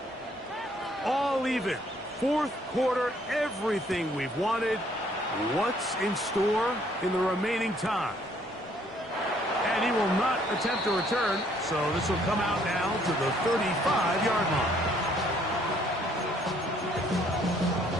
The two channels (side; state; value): both; normal; correlation 0.64